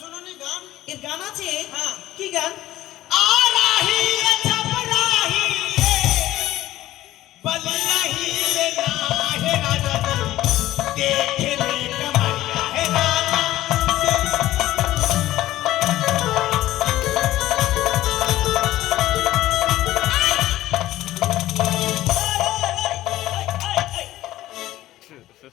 গান? এর গান আছে? হ্যাঁ। কি গান? आराही रे छपराही रे बलियाही रे नाहे राजा देख ले कमरिया है राजा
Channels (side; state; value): right; quieter; 15.1 dB